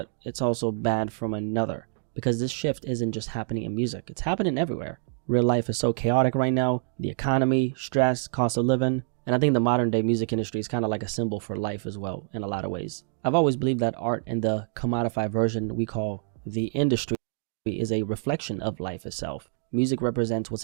it's also bad from another, because this shift isn't just happening in music, it's happening everywhere. Real life is so chaotic right now. The economy, stress, cost of living. And I think the modern day music industry is kind of like a symbol for life as well in a lot of ways. I've always believed that art in the commodified version we call the industry is a reflection of life itself. Music represents what's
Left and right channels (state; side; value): silent; left; 60 dB below the other